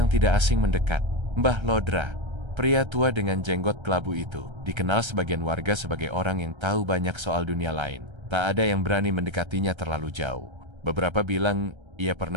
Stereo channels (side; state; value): left; late; 1.3 ms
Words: yang tidak asing mendekat. Mbah Lodra, pria tua dengan jenggot kelabu itu, dikenal sebagian warga sebagai orang yang tahu banyak soal dunia lain. Tak ada yang berani mendekatinya terlalu jauh. Beberapa bilang ia